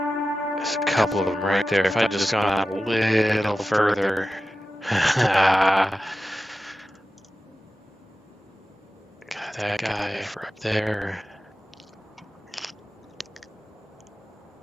There's a couple of them right there. If I'd just gone out a little further. Got that guy for up there.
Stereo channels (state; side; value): normal; both; correlation 0.94